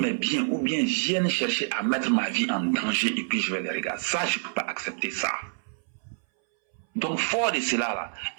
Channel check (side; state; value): left; silent; 60 dB below the other